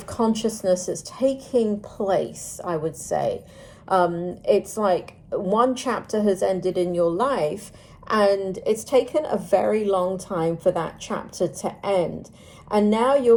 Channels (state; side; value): identical; both; correlation 1.00